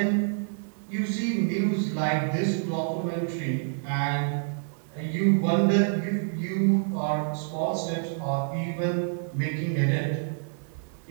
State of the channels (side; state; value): left; silent; digital silence